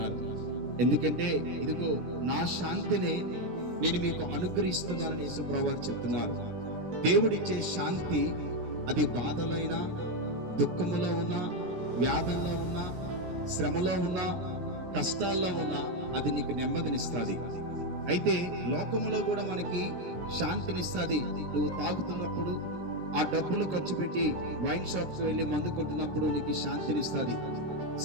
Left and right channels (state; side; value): late; left; 17 ms